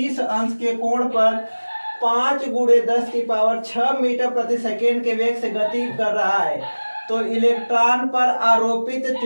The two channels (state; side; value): inverted; both; correlation -1.00